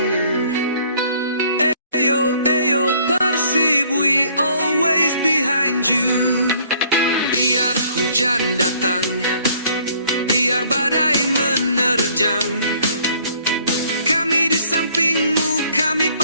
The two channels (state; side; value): inverted; both; correlation -0.60